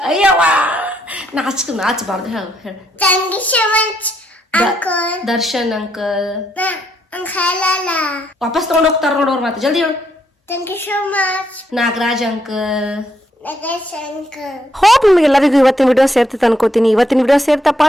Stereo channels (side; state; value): both; normal; correlation 0.75